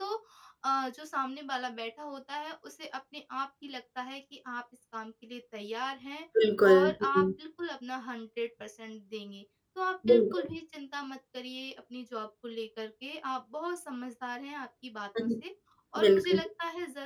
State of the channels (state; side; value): identical; both; correlation 1.00